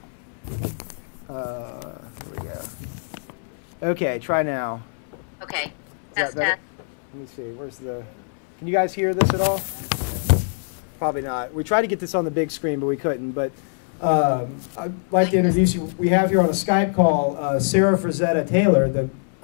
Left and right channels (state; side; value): silent; right; 63 dB below the other